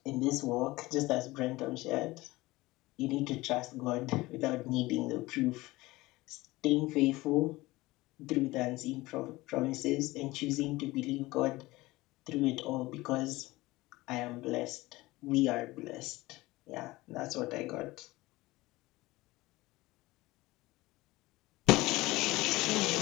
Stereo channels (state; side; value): quieter; right; 19.8 dB